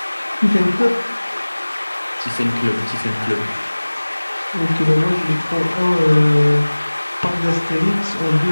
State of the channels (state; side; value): inverted; both; correlation -1.00